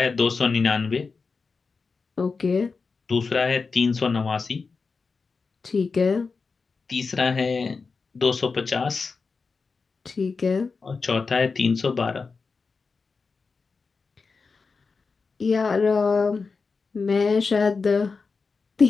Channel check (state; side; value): quieter; right; 4.6 dB